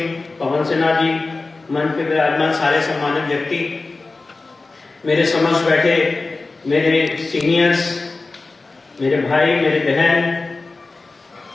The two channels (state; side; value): quieter; right; 3.6 dB